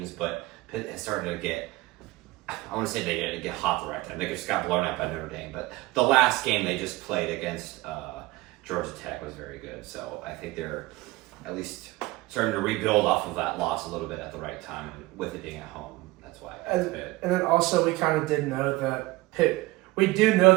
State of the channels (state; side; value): quieter; left; 20.6 dB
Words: but Pitt has started to get. I want to say they get hot the right time. They just got blown out by Notre Dame, but the last game they just played against Georgia Tech was very good. So I think they're at least starting to rebuild off of that loss a little bit at the right time, and with it being at home. That's why. And then also we kind of did know that Pitt. We do know